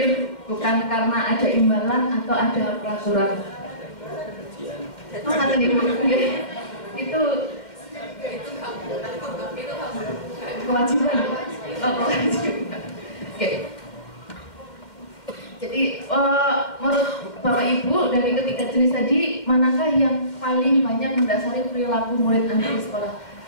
bukan karena ada imbalan atau ada peraturan. Itu kewajiban. Oke. Jadi menurut Bapak Ibu dari ketiga jenis tadi, manakah yang paling banyak mendasari perilaku murid Anda di sekolah?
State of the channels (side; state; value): right; late; 2.2 ms